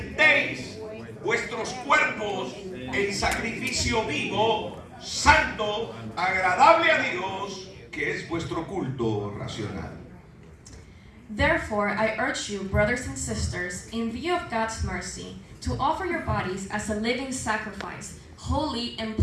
vuestros cuerpos en sacrificio vivo, santo, agradable a Dios, que es vuestro culto racional. Therefore, I urge you, brothers and sisters, in view of God's mercy, to offer your bodies as a living sacrifice, holy and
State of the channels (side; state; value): both; identical; correlation 1.00